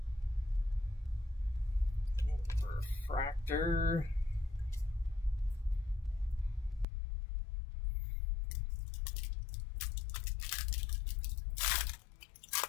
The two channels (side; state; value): right; drops out; at 6.9 s